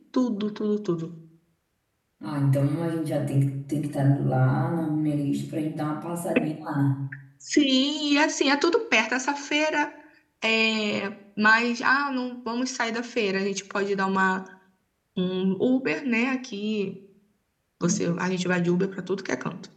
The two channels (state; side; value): identical; both; correlation 1.00